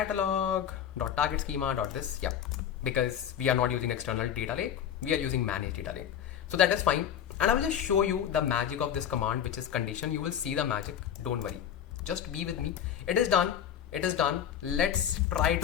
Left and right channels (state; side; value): quieter; right; 9.4 dB